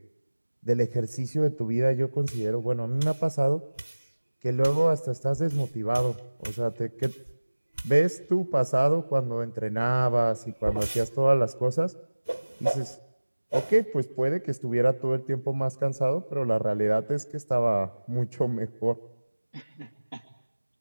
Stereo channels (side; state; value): both; inverted; correlation -1.00